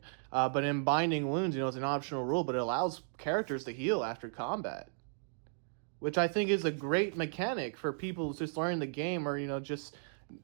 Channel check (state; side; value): silent; left; digital silence